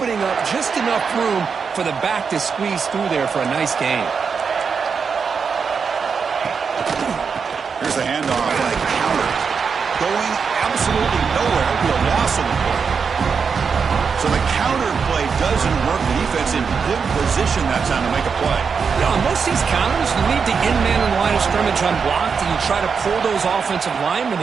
up just enough room for the back to squeeze through there for a nice gain. Here's the handoff and a counter. Going absolutely nowhere to a loss on the play. So the counter play doesn't work. The defense in good position that time to make a play. Yeah, on most of these counters, you leave the in-man in the line of scrimmage unblocked, and you try to pull those offensive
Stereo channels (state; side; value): quieter; left; 5.8 dB